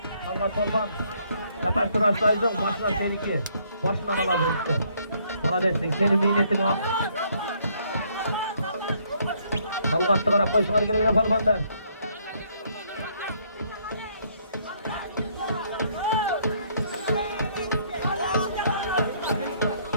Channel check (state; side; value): inverted; both; correlation -0.67